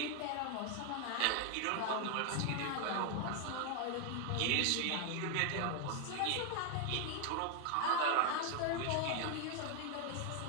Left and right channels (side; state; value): both; different; correlation 0.00